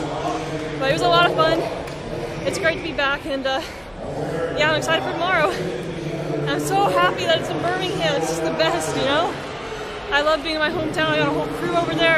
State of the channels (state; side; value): identical; both; correlation 1.00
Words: But it was a lot of fun. It's great to be back, and yeah, I'm excited for tomorrow. I'm so happy that it's in Birmingham. It's just the best, you know? I love being in my hometown. I got a whole crew over